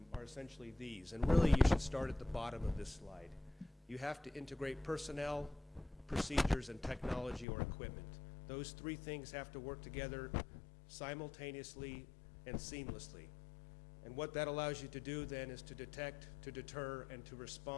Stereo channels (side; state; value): right; drops out; at 7.5 s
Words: are essentially these, and really you should start at the bottom of this slide. You have to integrate personnel, procedures, and technology or equipment. Those three things have to work together simultaneously and seamlessly. And what that allows you to do then is to detect, to deter, and to